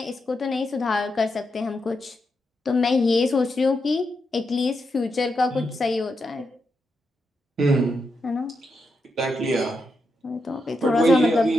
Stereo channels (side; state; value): both; normal; correlation 0.84